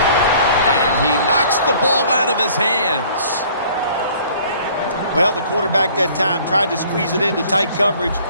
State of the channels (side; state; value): both; inverted; correlation -0.54